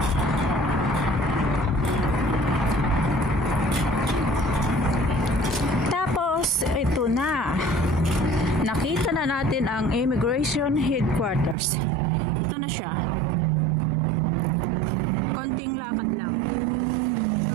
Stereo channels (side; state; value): left; drops out; at 11.6 s